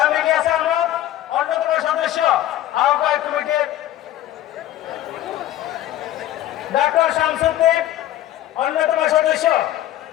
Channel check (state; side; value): quieter; right; 13.4 dB